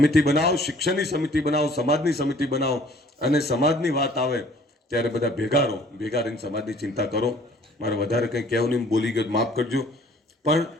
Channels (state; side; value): normal; both; correlation 0.55